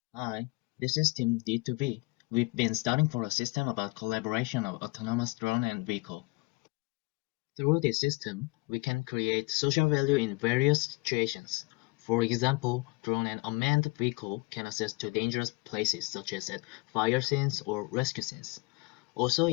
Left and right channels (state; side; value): quieter; right; 26.3 dB